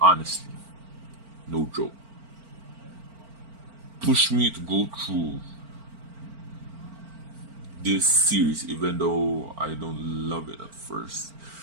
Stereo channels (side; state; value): left; late; 4.4 ms